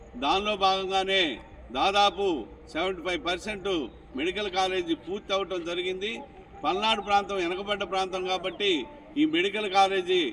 దానిలో భాగంగానే దాదాపు 75% మెడికల్ కాలేజీ పూర్తి అవటం జరిగింది. పల్నాడు ప్రాంతం వెనకబడ్డ ప్రాంతం కాబట్టి ఈ మెడికల్ కాలేజీ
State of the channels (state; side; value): identical; both; correlation 1.00